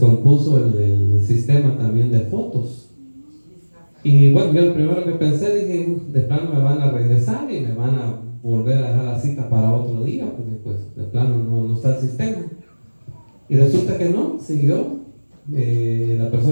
el sistema también de fotos. Y bueno, yo lo primero que pensé, dije, de plano me van a regresar y me van a volver a dejar la cita para otro día, porque pues de plano no está el sistema. Y resulta que no, siguió. La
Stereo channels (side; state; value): both; inverted; correlation -1.00